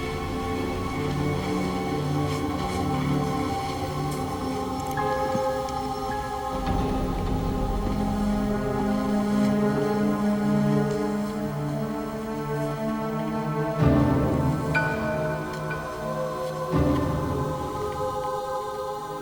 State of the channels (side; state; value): both; identical; correlation 1.00